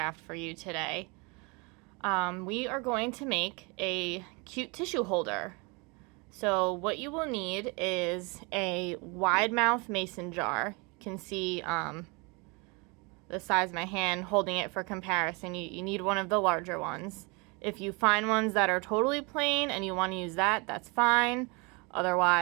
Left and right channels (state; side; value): quieter; left; 29.3 dB